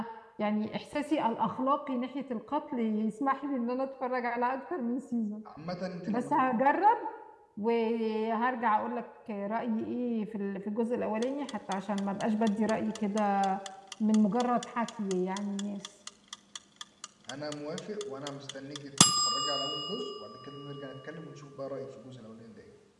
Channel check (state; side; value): identical; both; correlation 1.00